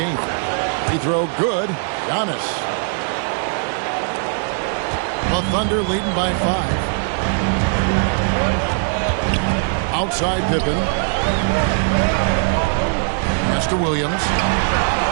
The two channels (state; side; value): silent; left; digital silence